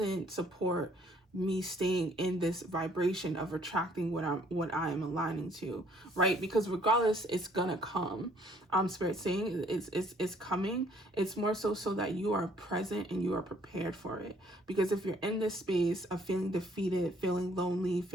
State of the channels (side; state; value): both; normal; correlation 0.62